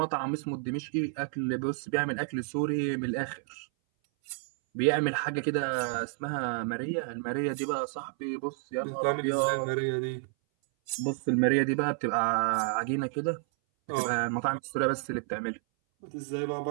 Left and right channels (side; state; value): left; silent; 58 dB below the other